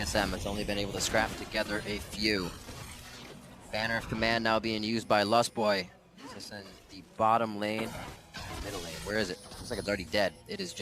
has only been able to scrap together a few. Banner of Command now being used by Lustboy. Just in the bottom lane, middle lane. Where is it? Looks like it's already dead. It is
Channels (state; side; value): identical; both; correlation 1.00